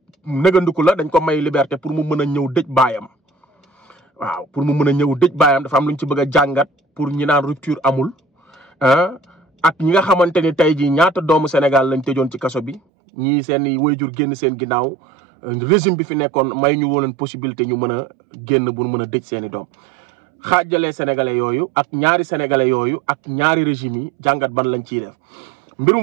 nëgandiku la dañ ko may liberté pour mu mën a ñëw dëj baayam waaw pour mu mën a ñëw dëj baayam dafa am luñ ci bëgg a jàngat pour ñi naan rupture amul ak ñi nga xamante ni tey jii ñaata doomu Sénégal lañ tëjoon ci kaso bi ñii seen i waajur génn seen ginnaaw régime bi fi nekkoon may ñu woon possibilité ñu mën a génn bu mën a dëj seen i doom xaajalee sénégalais yooyu ak ñaari sénégalais yooyu ak ñaari régime yi jàngat ban lañ ciy def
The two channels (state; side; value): drops out; left; at 12.8 s